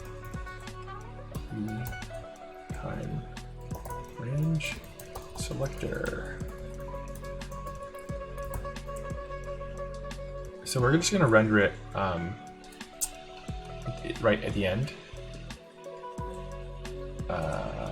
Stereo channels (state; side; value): identical; both; correlation 1.00